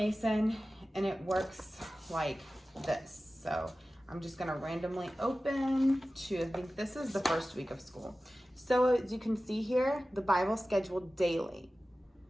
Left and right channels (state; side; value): normal; both; correlation 0.96